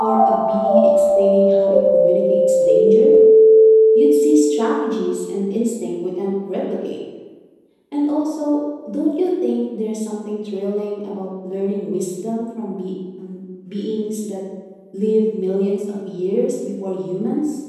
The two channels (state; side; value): identical; both; correlation 1.00